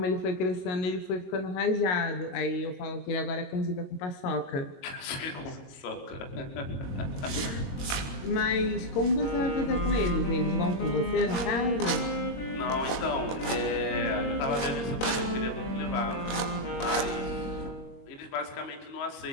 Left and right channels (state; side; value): late; right; 21 ms